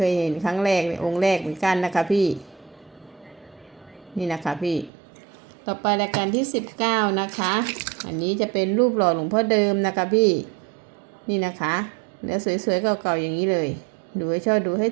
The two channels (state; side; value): drops out; left; at 4.9 s